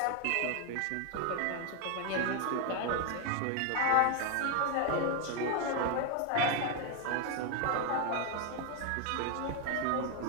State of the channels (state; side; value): different; both; correlation 0.01